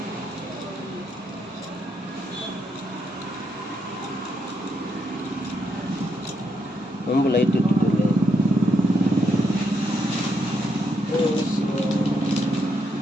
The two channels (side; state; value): both; normal; correlation 0.78